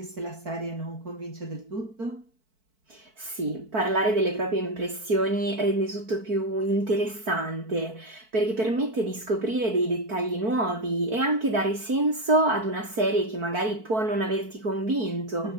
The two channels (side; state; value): left; late; 4.5 ms